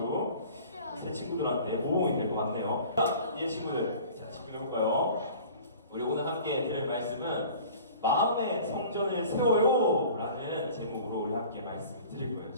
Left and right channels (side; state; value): both; inverted; correlation -0.45